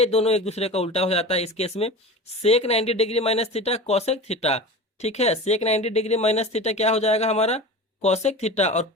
दोनों एक दूसरे का उल्टा हो जाता है इस केस में, सेक 90 degree minus theta cosec theta. ठीक है, सेक 90 डिग्री माइनस थीटा क्या हो जाएगा हमारा कॉसेक थीटा, और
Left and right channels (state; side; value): normal; both; correlation 0.32